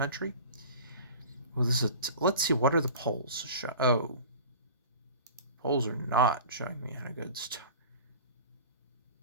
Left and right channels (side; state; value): both; inverted; correlation -0.39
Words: Well, let's see, what are the polls show? Oh, polls are not showing me a